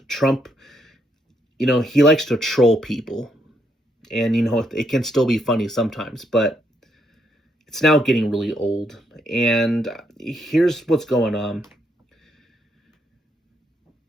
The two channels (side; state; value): both; normal; correlation 0.76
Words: he likes to troll people, and it can still be funny sometimes, but it's now getting really old. And here's what's going on.